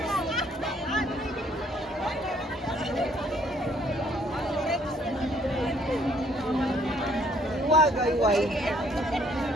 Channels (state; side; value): normal; both; correlation 0.64